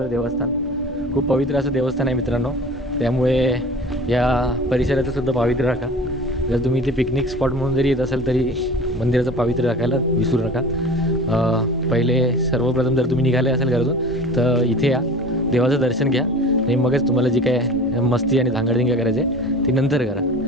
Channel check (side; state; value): both; normal; correlation 0.39